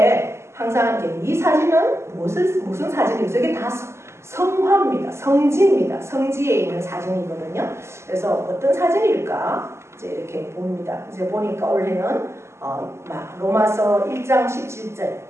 항상 이 사진은 무슨 사진이죠? 이게 다 성화입니다. 성지입니다. 성지에 있는 사진이거든요. 그래서 어떤 사진일까 이제 이렇게 봅니다. 이제 보니까 올해는 로마서 1장 17절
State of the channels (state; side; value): late; left; 0.13 ms